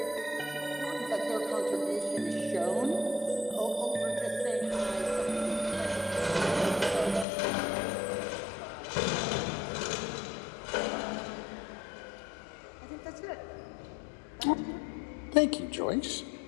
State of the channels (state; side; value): drops out; right; at 7.2 s